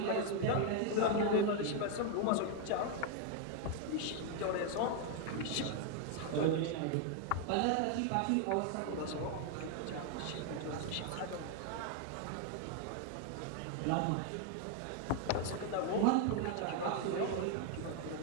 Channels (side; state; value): both; different; correlation 0.00